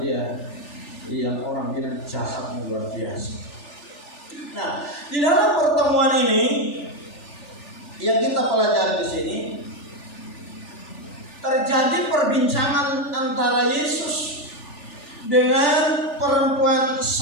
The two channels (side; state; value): right; late; 3.4 ms